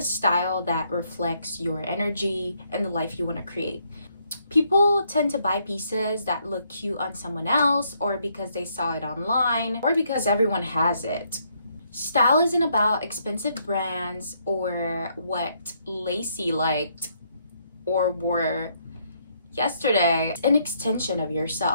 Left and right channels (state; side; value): inverted; both; correlation -0.72